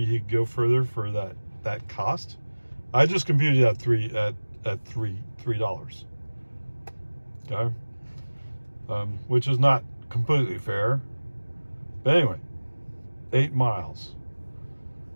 he'd go further for that cost. I just computed at $3. Okay. Which is not completely fair. But anyway, 8 miles.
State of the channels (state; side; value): inverted; both; correlation -1.00